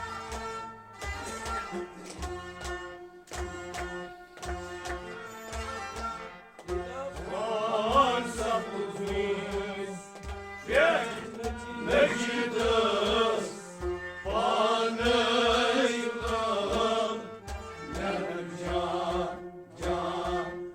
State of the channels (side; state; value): both; identical; correlation 1.00